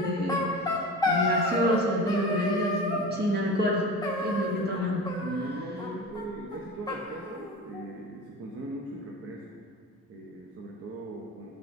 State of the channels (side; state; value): both; normal; correlation 0.32